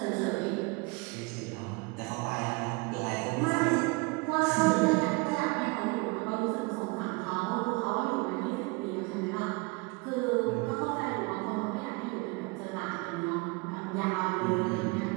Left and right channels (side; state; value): left; quieter; 27.7 dB